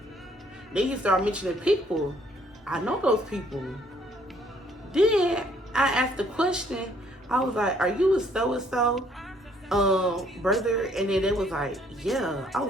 Then he started mentioning people. I know those people. Then I asked the question. I was like, are you a so-and-so brother? And then they was like, yeah. I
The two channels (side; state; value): both; normal; correlation 0.64